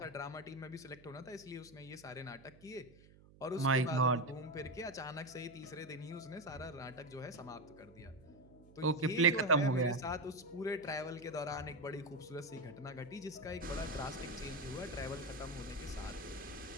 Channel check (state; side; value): noise; right; hum, 23 dB below the sound